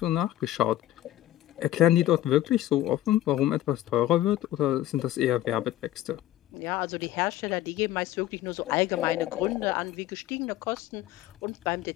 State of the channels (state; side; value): quieter; right; 13.9 dB